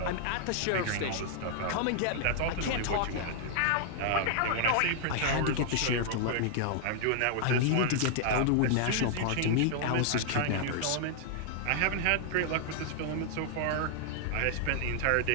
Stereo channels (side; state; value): both; different; correlation -0.01